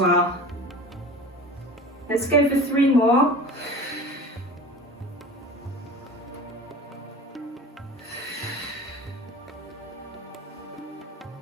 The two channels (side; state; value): both; normal; correlation 0.37